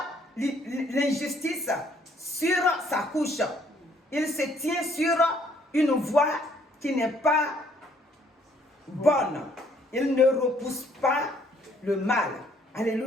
l'injustice sur sa couche. Il se tient sur une voie qui n'est pas bonne. Il ne repousse pas le mal.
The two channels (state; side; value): normal; both; correlation 0.65